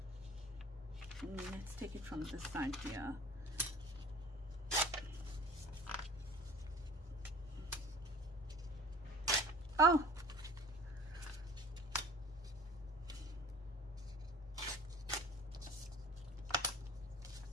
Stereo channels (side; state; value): both; normal; correlation 0.45